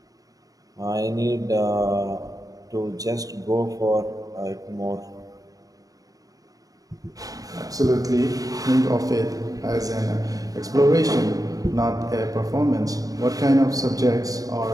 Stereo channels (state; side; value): late; left; 0.18 ms